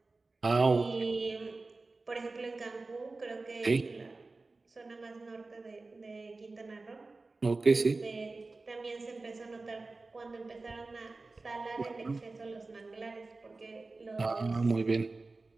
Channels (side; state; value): left; quieter; 3.5 dB